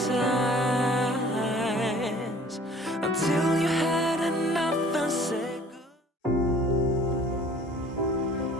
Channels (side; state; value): both; normal; correlation 0.51